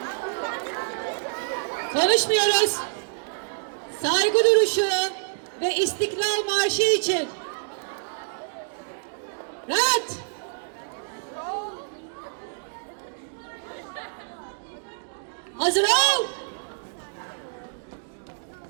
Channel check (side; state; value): left; silent; digital silence